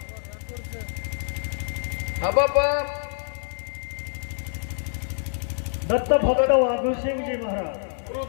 हबप दत्त भक्त वाघू सिंह जी महाराज गुरु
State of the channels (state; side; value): silent; right; digital silence